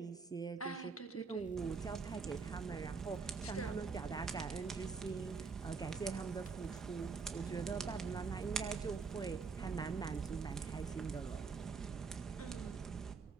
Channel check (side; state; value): left; quieter; 5.0 dB